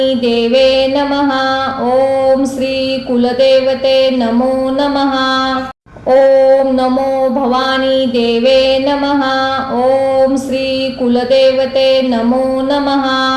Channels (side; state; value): both; identical; correlation 1.00